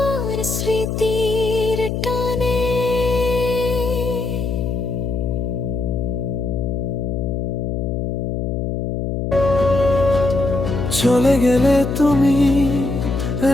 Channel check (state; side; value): noise; left; hum, 2 dB below the sound